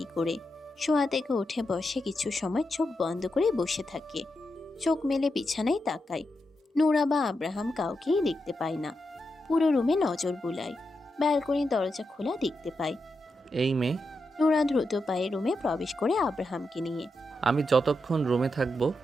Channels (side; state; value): both; normal; correlation 0.86